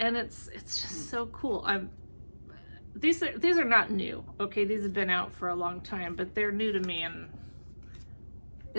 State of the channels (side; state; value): both; inverted; correlation -1.00